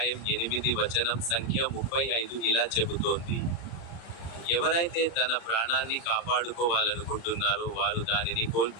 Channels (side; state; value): right; late; 35 ms